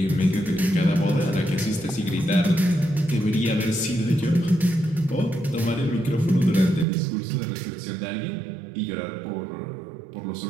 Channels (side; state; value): left; drops out; at 6.9 s